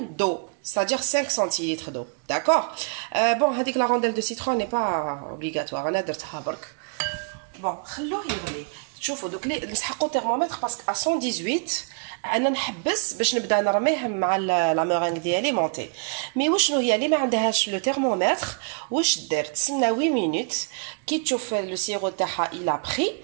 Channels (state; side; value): quieter; left; 38.9 dB